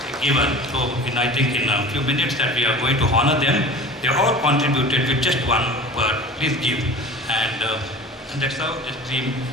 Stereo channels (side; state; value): both; normal; correlation 0.38